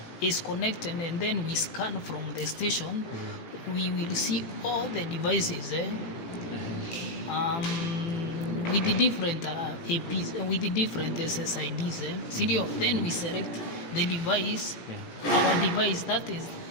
is connected and then we scan from the station, we will see all the devices with the different APs, with the different SSIDs. Then we select the device, our device, that is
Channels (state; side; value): late; right; 18 ms